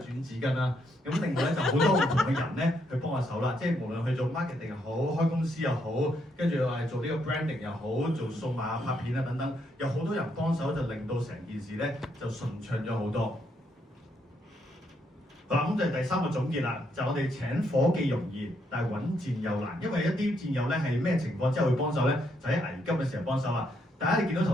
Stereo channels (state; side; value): normal; both; correlation 0.75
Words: 轉紙巾啦。咁另外咧就好多唔同嘅人咧去幫下手啦。即係無論去做 marketing 又好，開公司又好，跟住話做呢個 branding 又好，做數碼拍片啊等等，有好多人幫手就令到成件事咧就順暢咗好多。好啦，咁就係第3個總結啦，就我哋請夥計容易，但係揾戰友難，因為一啲戰友咧係咩情況之後會幫手咧，就喺危急嘅時候幫手啦。大家你見到